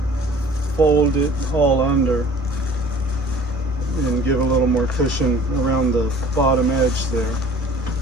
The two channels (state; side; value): normal; both; correlation 0.49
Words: fold it all under and give a little more cushion around the bottom edge there.